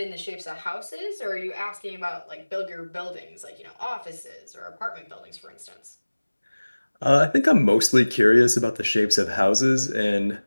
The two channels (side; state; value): both; inverted; correlation -1.00